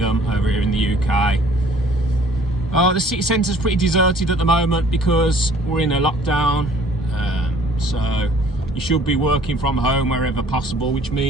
over here in the UK. The city centre is pretty deserted at the moment because we're in a lockdown. So you should be working from home wherever possible, which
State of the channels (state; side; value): normal; both; correlation 0.55